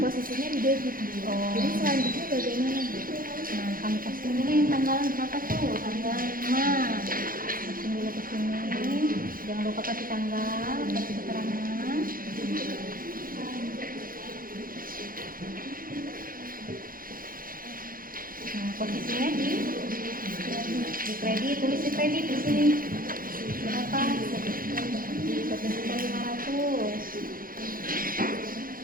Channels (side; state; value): left; late; 0.41 ms